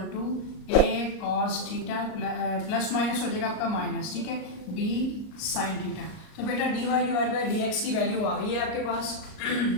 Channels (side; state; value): right; late; 38 ms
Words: to a cos theta plus minus हो जाएगा आपका माइनस, ठीक है, बी साइन थीटा। तो बेटा d y divide by d x की वैल्यू आ गई है आपके पास,